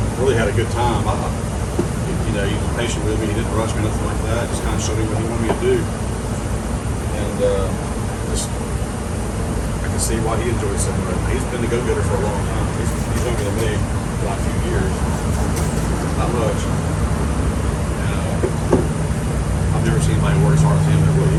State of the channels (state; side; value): identical; both; correlation 1.00